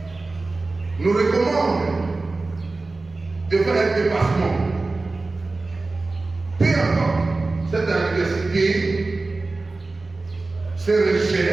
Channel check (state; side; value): quieter; left; 3.4 dB